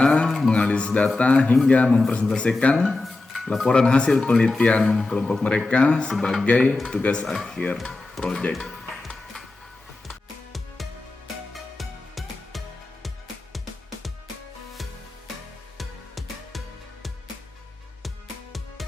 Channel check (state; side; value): quieter; right; 3.2 dB